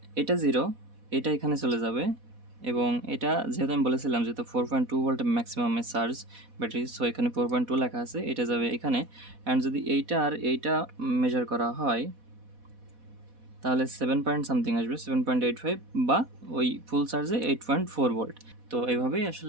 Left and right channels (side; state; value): left; late; 4.1 ms